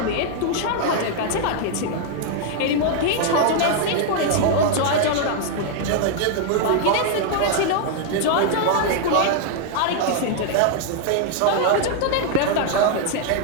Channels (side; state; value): both; different; correlation 0.00